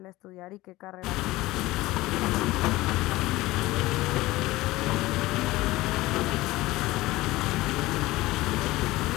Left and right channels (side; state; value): right; quieter; 18.8 dB